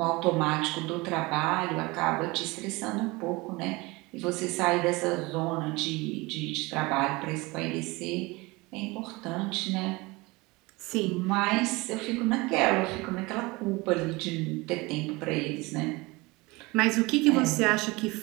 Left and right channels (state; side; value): quieter; left; 23.5 dB